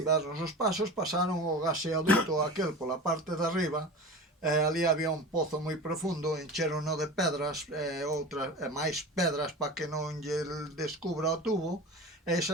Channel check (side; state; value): both; normal; correlation 0.33